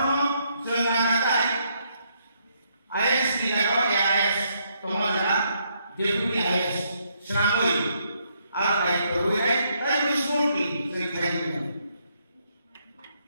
জয়নাগাতায় আইএস কি জায়গা এআইএস তোমার জানা ডেপুটি আইএস শ্রামই আর দায়িত্ব হয়ে তাই স্মুথলি সেই খাইতে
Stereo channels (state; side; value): inverted; both; correlation -0.74